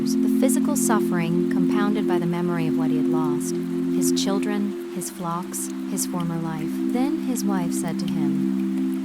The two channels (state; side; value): identical; both; correlation 1.00